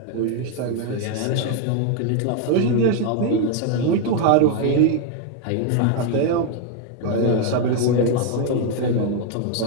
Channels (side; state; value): both; different; correlation 0.01